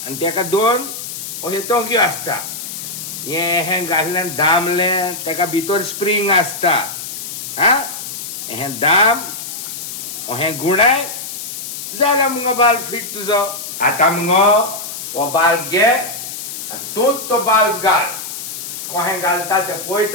आनी तेका दोन अशे तोंक्यो आसता हें घातलें दामलें तेका भितर स्प्रींग आसता हा हें दाम हें गुणाय जाला मुगो बाल्ब फिट तुजो आतां मुगो हो बाल्ब घे तूंच तो बाल्ब घाल कोहें घालता तें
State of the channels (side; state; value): left; noise; hiss, 8 dB below the sound